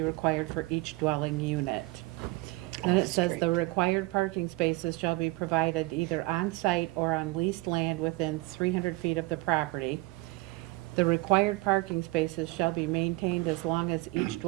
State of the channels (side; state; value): left; quieter; 22.3 dB